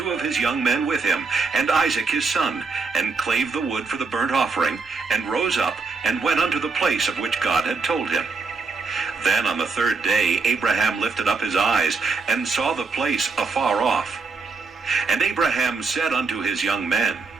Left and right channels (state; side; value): quieter; left; 4.5 dB